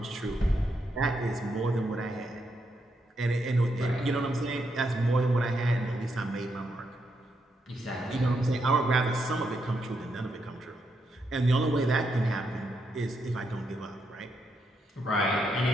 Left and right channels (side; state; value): both; normal; correlation 0.80